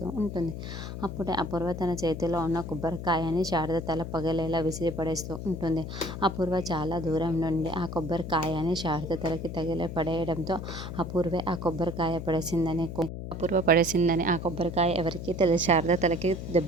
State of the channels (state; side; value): noise; left; hum, 7 dB below the sound